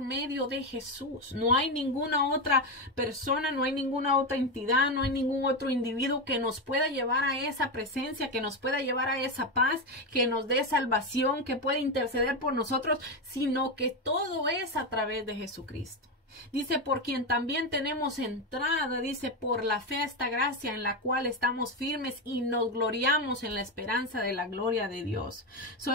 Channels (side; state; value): both; normal; correlation 0.11